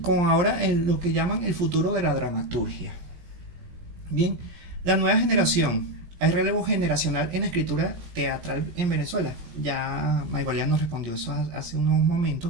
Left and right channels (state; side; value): late; left; 17 ms